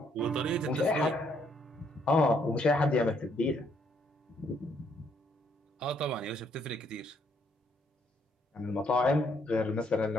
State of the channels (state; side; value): normal; both; correlation 0.70